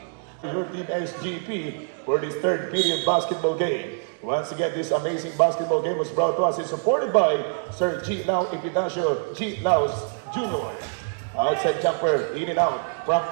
Your team SGP for this third period basketball game. Once again, this amazing basketball game was brought to us and supported by Sir G. Lau Epidacio G. Laus Jr. Outside jumper, in and out from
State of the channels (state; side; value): silent; left; digital silence